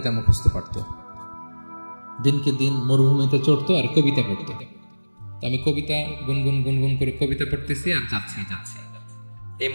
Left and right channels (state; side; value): inverted; both; correlation -1.00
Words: মুখস্থ পারত। দিনকে দিন মরুভূমিতে চড়তো আর কবিতা পড়তো। আমি কবিতা গুনগুন গুনগুন করে কবিতা পড়তেছি আর যাচ্ছি। এই